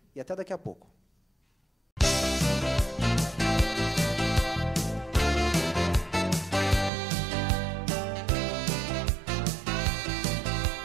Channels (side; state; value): left; drops out; at 6.9 s